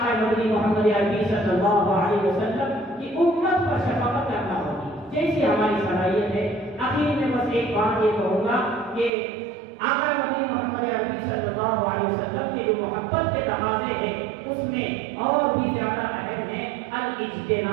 مدنی محمد عربی صلی اللہ علیہ وسلم کی امت پر شفقت کرنا ہوگی جیسی ہماری صلاحیت ہے۔ آخر میں بس ایک بات یہ کہوں گا کہ آقا نبی محمد عربی صلی اللہ علیہ وسلم کے جو محبت کے تقاضے ہیں اس میں اور بھی زیادہ اہم ہے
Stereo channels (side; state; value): left; drops out; at 9.1 s